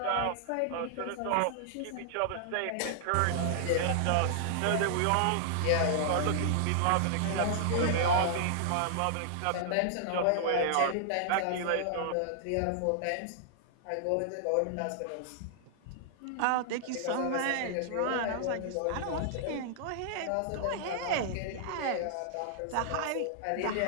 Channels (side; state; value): both; different; correlation -0.01